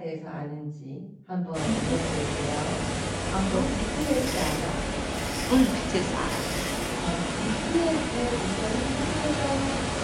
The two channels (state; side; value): identical; both; correlation 1.00